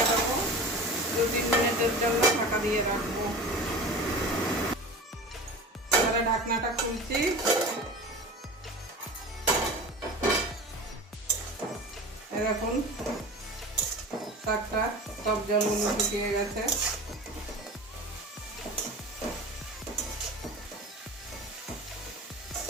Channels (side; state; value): both; normal; correlation 0.34